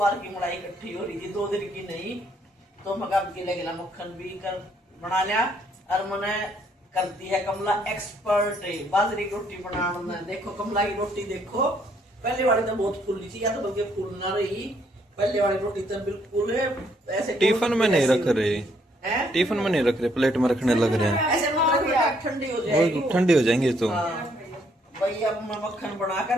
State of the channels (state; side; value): normal; both; correlation 0.69